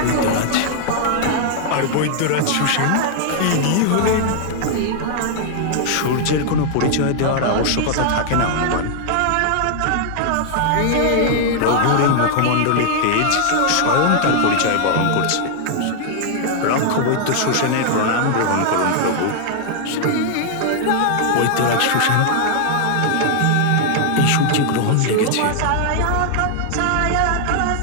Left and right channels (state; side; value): different; both; correlation 0.00